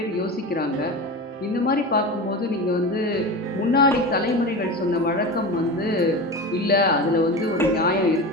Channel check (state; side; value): normal; both; correlation 0.27